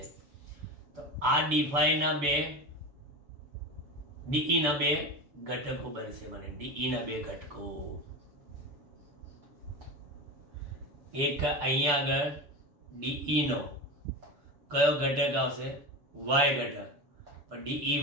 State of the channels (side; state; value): left; late; 6.9 ms